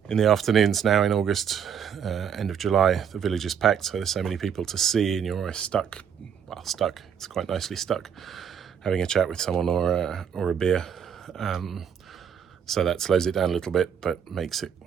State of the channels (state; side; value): quieter; left; 7.8 dB